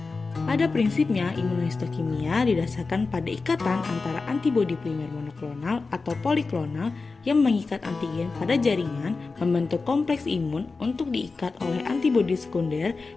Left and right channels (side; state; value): right; quieter; 4.1 dB